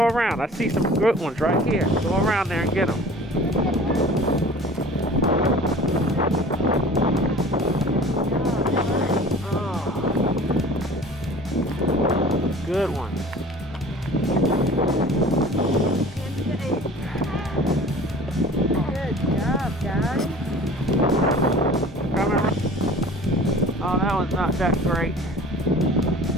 around. I see some good ones right here. Go around there and get them. Good ones. Good job, guys. Oh, that one's not that great.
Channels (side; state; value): both; normal; correlation 0.44